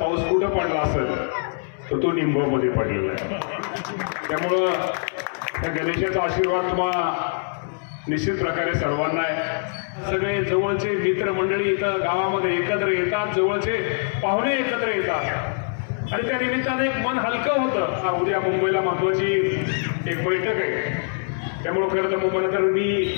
कुठं पडला असेल तर तो निमगावमध्ये पडलेला आहे। त्यामुळं त्या गणेशाचा आशीर्वाद तुम्हाला निश्चित प्रकारे सर्वांना आहे। सगळे जवळचे मित्रमंडळी इथं गावामध्ये एकत्र येतात, जवळचे पाहुणे एकत्र येतात आणि त्या निमित्ताने एक मन हलकं होतं। उद्या मुंबईला महत्त्वाची एक बैठक आहे, त्यामुळे खरं तर मुंबईला तर मी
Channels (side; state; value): right; silent; 61 dB below the other